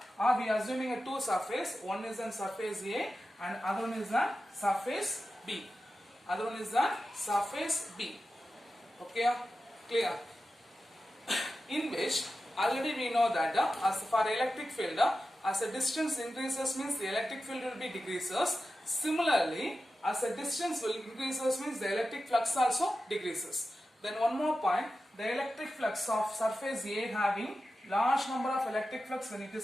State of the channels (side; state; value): both; normal; correlation 0.92